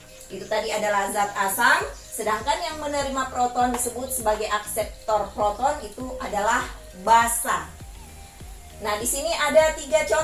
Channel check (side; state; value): both; identical; correlation 1.00